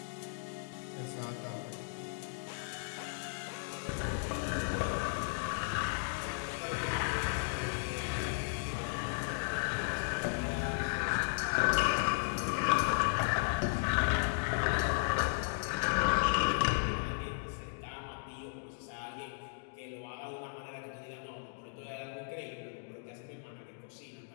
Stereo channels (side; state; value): right; silent; digital silence